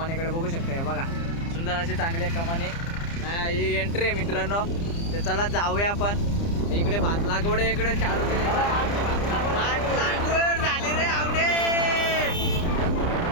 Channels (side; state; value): right; late; 30 ms